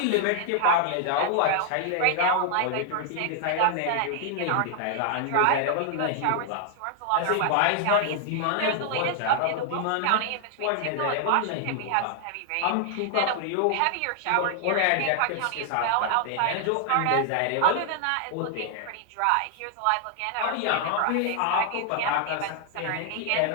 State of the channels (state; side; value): different; both; correlation 0.00